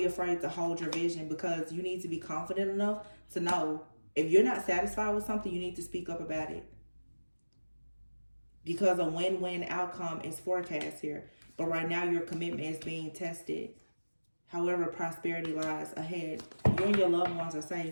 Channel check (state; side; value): inverted; both; correlation -1.00